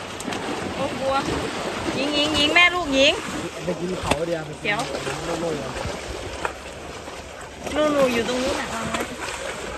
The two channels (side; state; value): both; identical; correlation 1.00